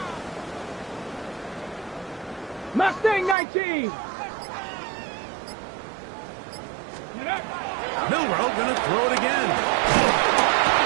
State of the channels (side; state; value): left; drops out; at 3.4 s